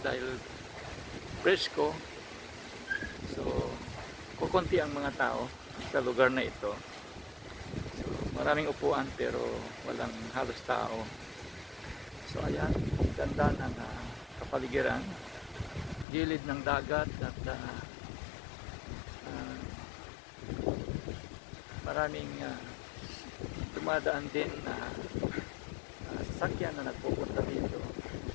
dahil presko. So, kukunti ang mga tao sa lugar na ito. So, maraming upuan pero walang halos tao. So, ayan, ganda ng kapaligiran. Gilid ng dagat at maraming dumadaan din na sasakyan na nagpupunta dito.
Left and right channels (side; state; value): right; drops out; at 16.1 s